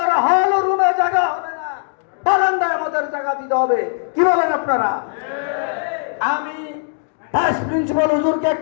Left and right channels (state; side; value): silent; right; digital silence